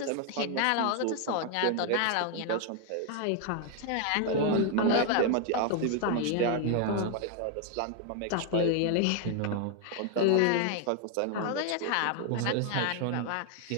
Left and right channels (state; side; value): different; both; correlation 0.00